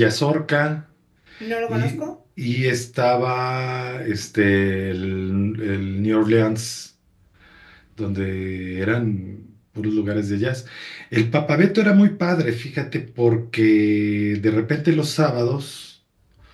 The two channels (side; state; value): both; identical; correlation 1.00